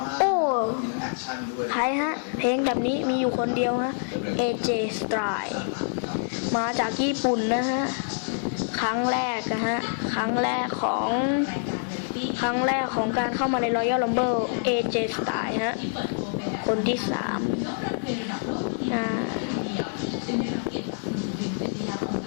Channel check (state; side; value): silent; right; digital silence